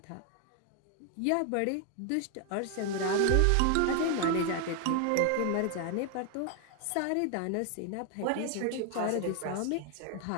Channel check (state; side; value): different; both; correlation 0.00